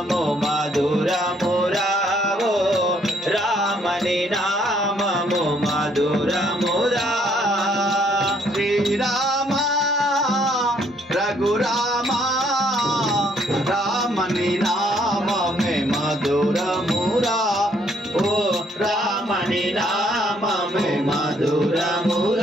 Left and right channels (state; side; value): normal; both; correlation 0.67